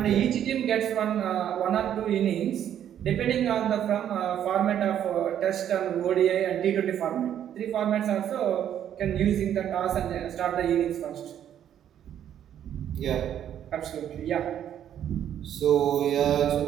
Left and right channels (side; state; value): left; quieter; 10.1 dB